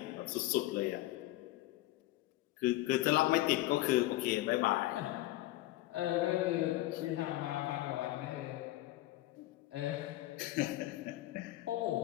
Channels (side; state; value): right; quieter; 17.1 dB